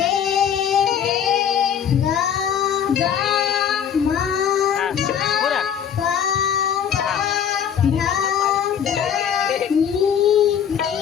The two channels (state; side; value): quieter; right; 8.4 dB